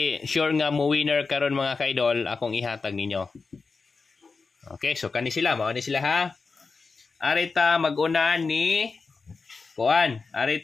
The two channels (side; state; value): right; quieter; 4.4 dB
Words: sure nga mo winner karon mga kaidol, akong ihatag ninyo. Okay, so kani sila, mao ni sila ha. Arita mag-una ni kuan,